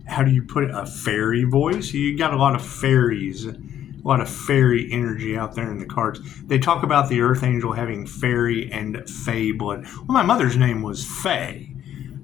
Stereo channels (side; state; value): right; quieter; 10.8 dB